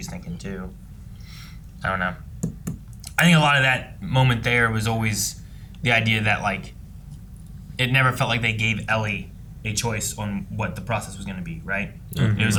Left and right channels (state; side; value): identical; both; correlation 1.00